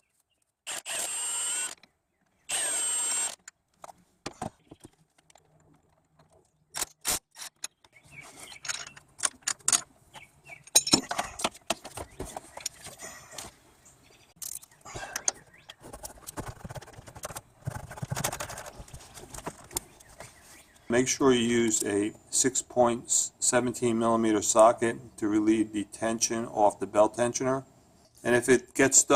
Make sure you use a 6.17 millimeter socket to relieve the tension off the belt tensioner. And if it gets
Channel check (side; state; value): both; identical; correlation 1.00